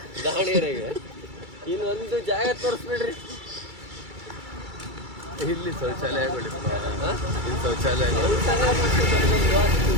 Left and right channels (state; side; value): late; left; 2.3 ms